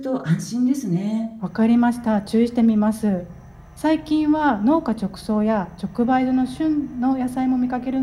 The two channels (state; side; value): identical; both; correlation 1.00